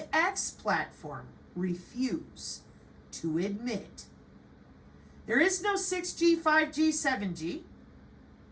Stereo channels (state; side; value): identical; both; correlation 1.00